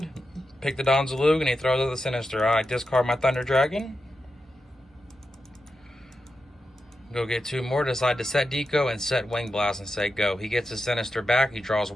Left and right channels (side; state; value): both; normal; correlation 0.89